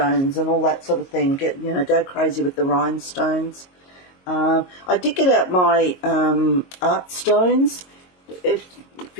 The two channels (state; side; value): late; right; 22 ms